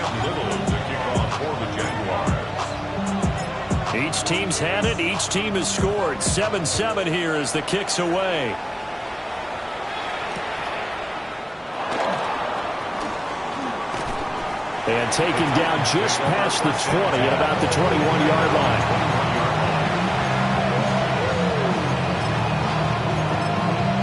Each team's had it. Each team has scored. 7-7 here as the kick's away. And taken down just past the 20 at about the 21-yard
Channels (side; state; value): both; identical; correlation 1.00